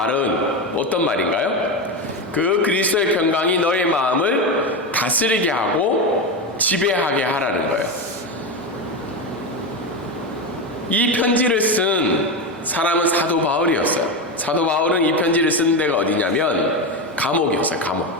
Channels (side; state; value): both; normal; correlation 0.16